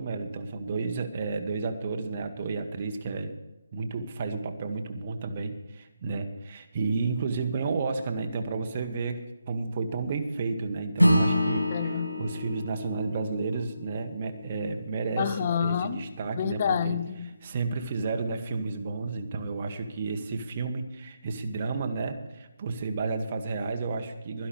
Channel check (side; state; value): both; inverted; correlation -0.79